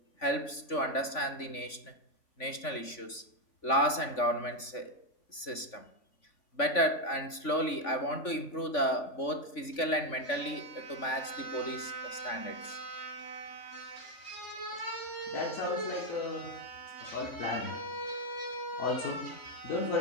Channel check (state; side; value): late; right; 3.5 ms